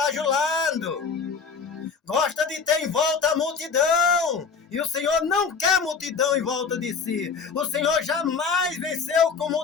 gosta de ter em volta a multidão, e o Senhor não quer multidão em volta de si. O Senhor jamais venceu com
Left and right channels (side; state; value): right; quieter; 5.5 dB